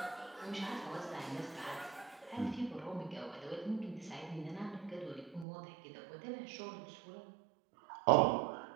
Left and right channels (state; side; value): drops out; left; at 5.5 s